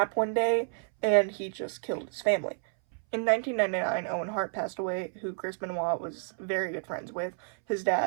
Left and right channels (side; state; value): left; silent; 58 dB below the other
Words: one day, and he just killed his family. In 1999, Owen Hart passed away, who Chris Benoit was very good friends with. His